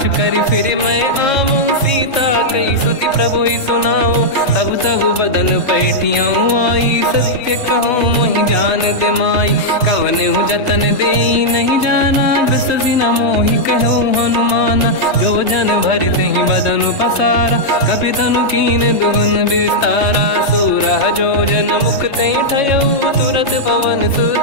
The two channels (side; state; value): right; late; 3.3 ms